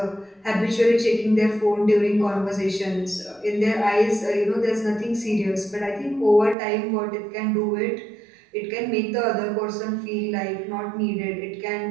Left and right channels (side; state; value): left; drops out; at 6.6 s